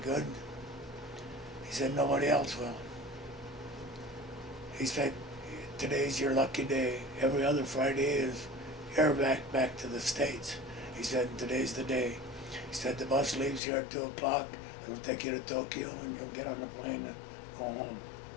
He said, "Nobody else will." He said, "Today's your lucky day. Every other Friday is airback back to the States." He said, "Today's the day." He said, "The bus leaves here at 2 o'clock. It'll take you to Tokyo, and you'll get on the plane and go home."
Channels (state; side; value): drops out; right; at 13.6 s